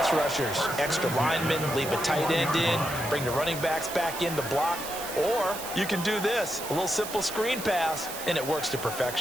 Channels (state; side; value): noise; right; hiss, 9 dB below the sound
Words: rushers. Extra linemen, leave a tight end in, bring the running backs back in to block. Or you can do this, a little simple screen pass, and it works to